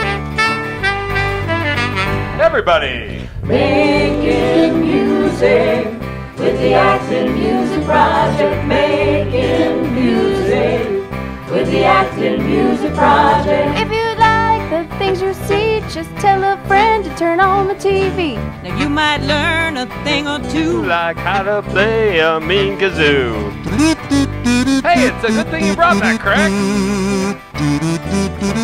Everybody! Making music with the Acton Music Project. Making music with the Acton Music Project. If you like the things you see, just tell a friend to turn on the TV. Now you might learn a thing or two. Like how to play a mean kazoo. Hey, it's a good thing you brought that, Craig.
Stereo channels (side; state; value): both; identical; correlation 1.00